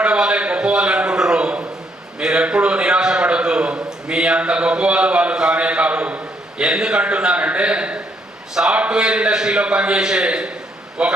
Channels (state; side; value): normal; both; correlation 0.72